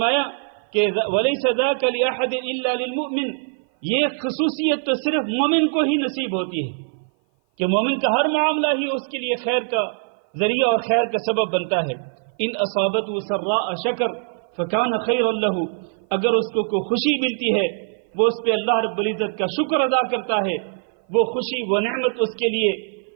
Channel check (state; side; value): silent; left; 56 dB below the other